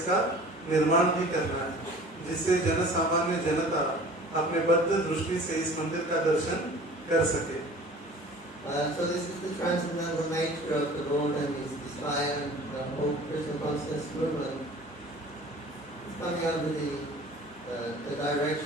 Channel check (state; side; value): normal; both; correlation 0.45